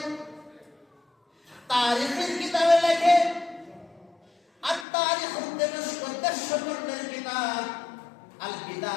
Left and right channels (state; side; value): drops out; right; at 4.9 s